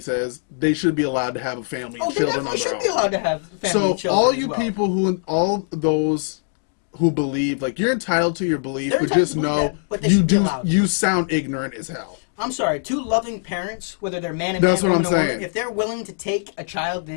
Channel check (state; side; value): silent; right; digital silence